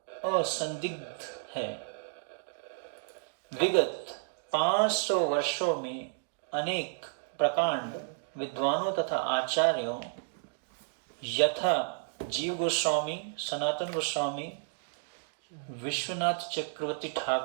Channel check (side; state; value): left; silent; digital silence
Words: असंदिग्ध है। विगत 500 वर्षों में अनेक प्रकांड विद्वानों तथा आचार्यों यथा जीव गोस्वामी, सनातन गोस्वामी, विश्वनाथ चक्रवर्ती